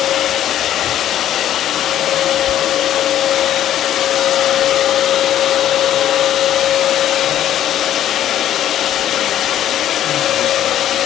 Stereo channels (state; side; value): quieter; right; 11.4 dB